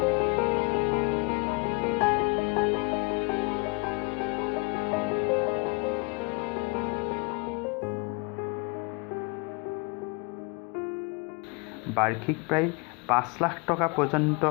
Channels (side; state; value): right; quieter; 30.6 dB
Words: বাৰ্ষিক প্ৰায় ৫ লাখ টকা পৰ্যন্ত